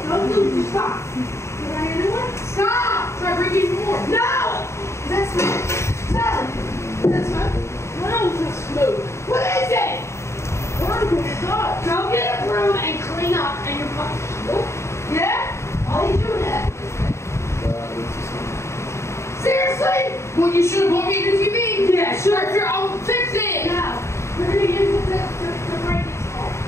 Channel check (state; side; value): late; right; 0.13 ms